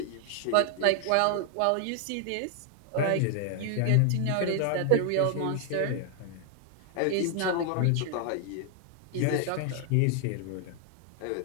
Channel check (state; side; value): different; both; correlation 0.00